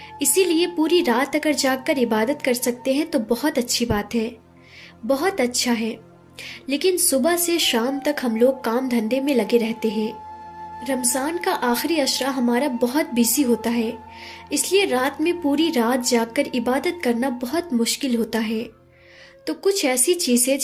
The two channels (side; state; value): both; identical; correlation 1.00